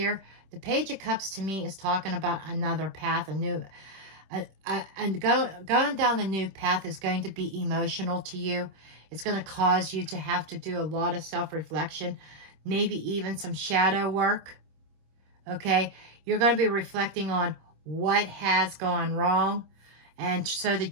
the Page of Cups to me is talking about another path, and going down the new path is going to be emotional to you. It's going to cause you to have to do a lot of self-reflection, maybe even some shadow work, okay? You're going to be reflecting on what has gone wrong, and so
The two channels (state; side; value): late; left; 26 ms